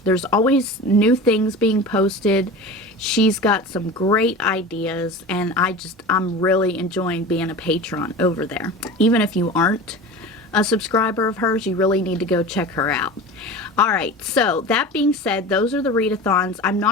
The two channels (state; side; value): normal; both; correlation 0.33